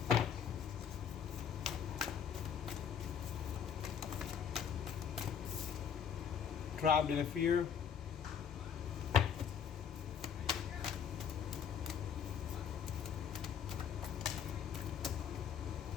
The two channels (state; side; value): quieter; right; 7.8 dB